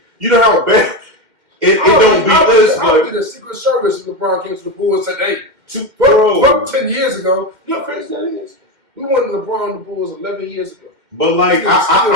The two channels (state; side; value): late; left; 2.1 ms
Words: You know how bad it don't beat us, but I'll be the Secret Service if LeBron came to the Bulls and said, "Hey, fuck 10 years ago." You know how crazy that is? We won LeBron and the Bulls 11 years ago. But like,